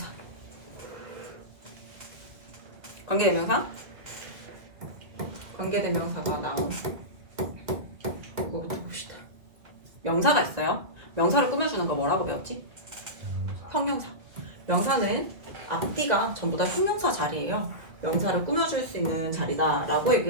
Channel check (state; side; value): late; left; 2.1 ms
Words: 관계대명사? 관계대명사가 나온 그거부터 봅시다. 명사가 있어요. 명사를 꾸며주는 거 뭐라고 배웠지? 형용사. 명사는 앞뒤가 전부 다 형용사 자리예요. 명사를 꾸며줄 수 있는 자리다라고